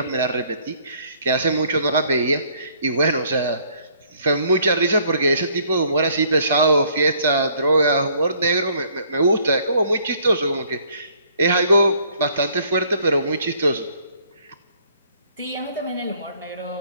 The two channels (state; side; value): inverted; both; correlation -0.62